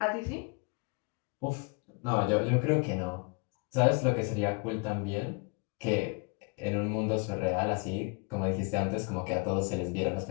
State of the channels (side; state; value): right; quieter; 33.3 dB